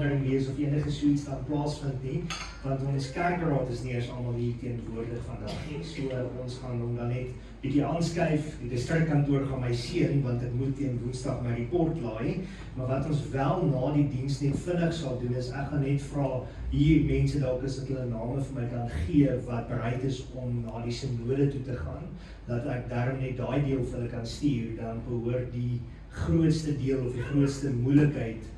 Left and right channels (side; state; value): both; identical; correlation 1.00